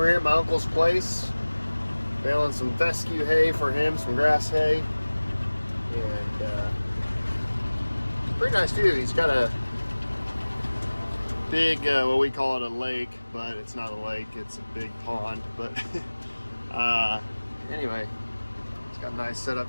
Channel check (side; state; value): both; inverted; correlation -1.00